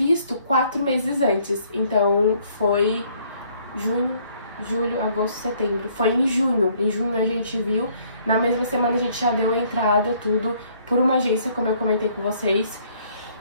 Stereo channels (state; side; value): inverted; both; correlation -0.63